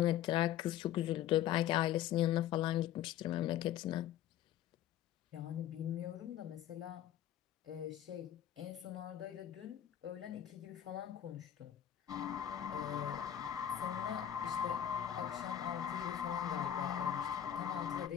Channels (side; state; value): right; quieter; 11.0 dB